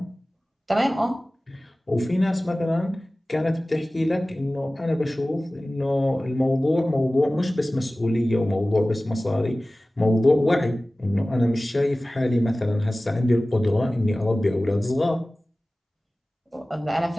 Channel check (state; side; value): normal; both; correlation 0.97